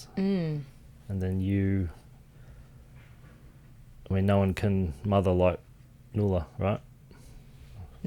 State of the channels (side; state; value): both; identical; correlation 1.00